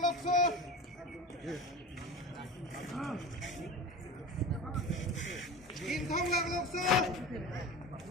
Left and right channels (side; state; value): both; normal; correlation 0.32